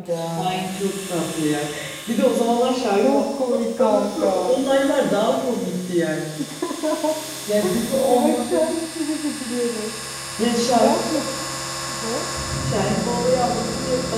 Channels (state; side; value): identical; both; correlation 1.00